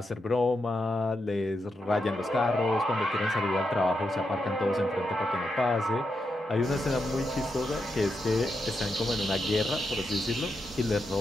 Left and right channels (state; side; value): normal; both; correlation 0.85